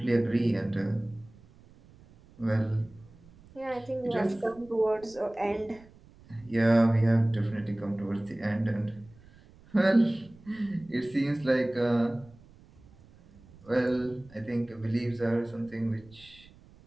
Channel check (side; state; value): right; noise; rumble, 25 dB below the sound